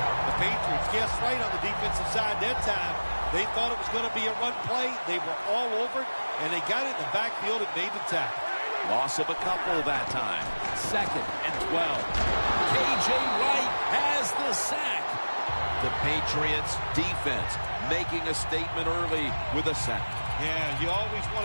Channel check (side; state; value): both; inverted; correlation -1.00